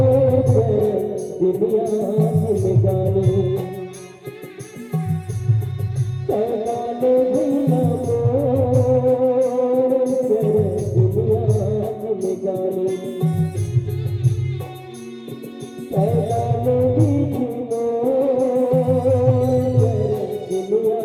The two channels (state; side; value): identical; both; correlation 1.00